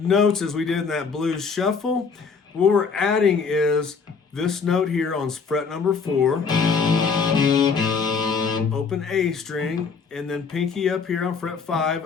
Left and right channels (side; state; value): right; quieter; 5.4 dB